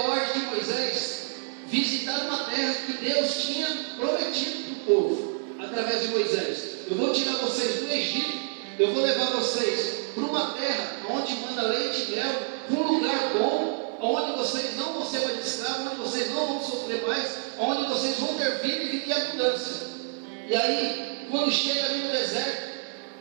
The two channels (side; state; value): left; silent; 58 dB below the other